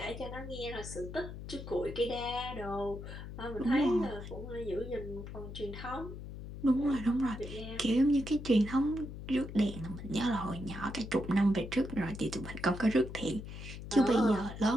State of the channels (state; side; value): noise; left; hum, 10 dB below the sound